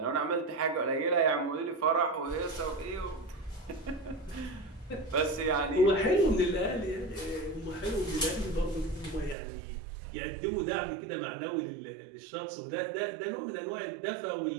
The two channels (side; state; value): left; drops out; at 9.3 s